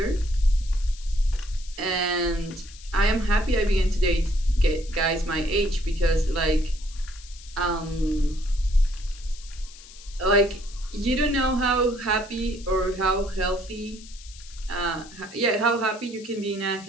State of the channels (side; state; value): left; noise; hiss, 19 dB below the sound